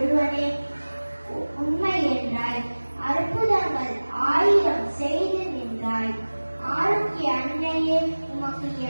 உண்மை என்றாய், அற்புதங்கள் 1000 செய்து நின்றாய். ஆரோக்கிய அன்னையே, உமக்கு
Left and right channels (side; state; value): both; inverted; correlation -1.00